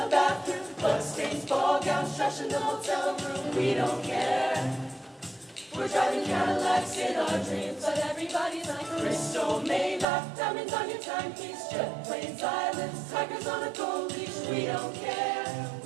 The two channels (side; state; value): left; drops out; at 10.1 s